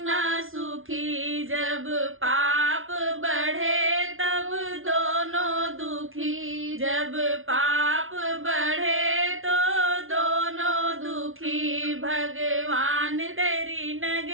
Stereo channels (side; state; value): left; late; 0.59 ms